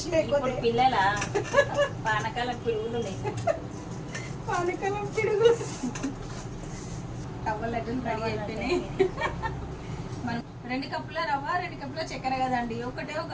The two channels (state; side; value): identical; both; correlation 1.00